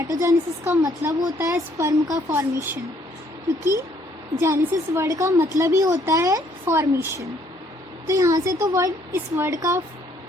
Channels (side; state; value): both; normal; correlation 0.65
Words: का मतलब होता है स्पर्म का फॉर्मेशन, क्योंकि जेनेसिस वर्ड का मतलब ही होता है फॉर्मेशन। तो यहाँ से तो इस वर्ड का